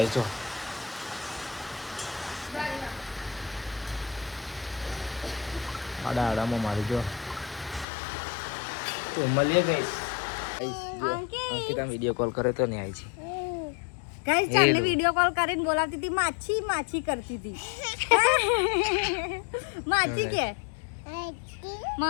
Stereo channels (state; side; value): drops out; right; at 7.9 s